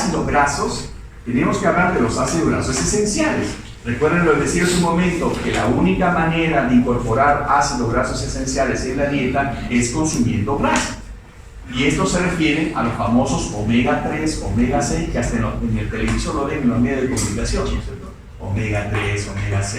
grasos, tenemos que hablar de los ácidos grasos esenciales. Recuerden lo que decía hace un momento, que la única manera de incorporar ácidos grasos esenciales en la dieta es consumiendo grasa. Y esto se refiere a los famosos omega 3, omega 6, que hasta en el televisor lo ven en los medios de comunicación, ¿no es cierto? Omega 3, omega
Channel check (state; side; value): identical; both; correlation 1.00